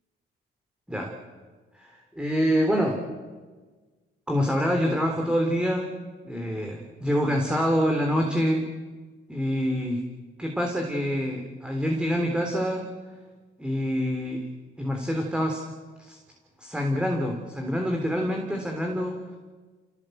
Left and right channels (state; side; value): normal; both; correlation 0.84